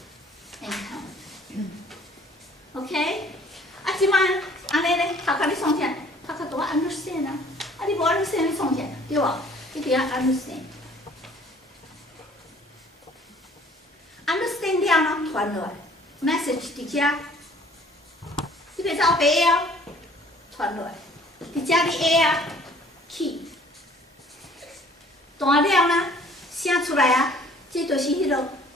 count。OK， 啊，即摆安尼咧，头壳你创啥？头壳都要 understand 啊，啊，你无 understand 你创啥？对无？你得要 understand。understand 了呢，传落来 ，message 伫遮，你袂使后白哦，传落来，伫遮你下啊 ，key， 断了呢，声出来啊，这就是迄落。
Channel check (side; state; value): both; normal; correlation 0.55